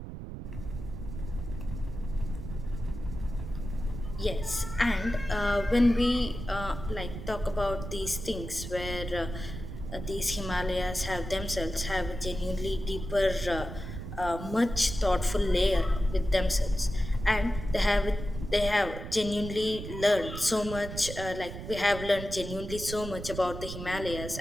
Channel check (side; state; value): right; noise; rumble, 8 dB below the sound